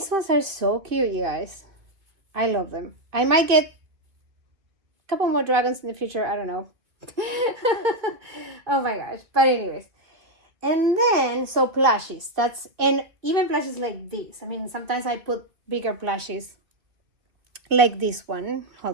ones are so cute, you guys. I love them. I might get a couple more dragons in the future. I don't know. Oh my gosh. But anyways. And then, so plushies. And even plushies like this. I mean, sometimes I put bigger plushies like this one.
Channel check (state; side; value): late; left; 2.5 ms